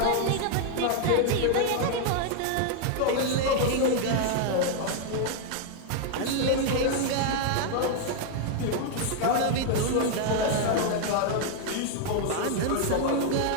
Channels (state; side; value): different; both; correlation 0.00